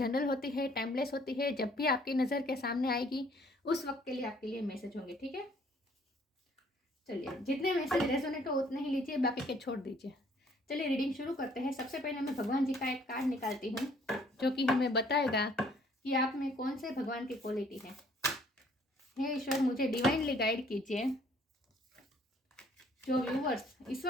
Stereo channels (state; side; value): normal; both; correlation 0.61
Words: होती है, टाइमलेस होती है। जब भी आपकी नज़र के सामने आएगी उस वक्त के लिए आपके लिए मैसेज होंगे, ठीक है। चलिए, जितने मैसेज रेजोनेट हो उतने ही लीजिए, बाकी के छोड़ दीजिए। चलिए रीडिंग शुरू करते हैं। सबसे पहले मैं भगवान जी का एक कार्ड निकालती हूँ जो कि हमें बताएगा कि आप में कौन से भगवान की क्वालिटी है। हे ईश्वर, मुझे डिवाइनली गाइड कीजिए। जो व्यूवर्स इस